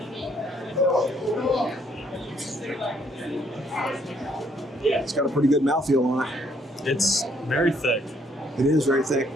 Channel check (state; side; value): normal; both; correlation 0.67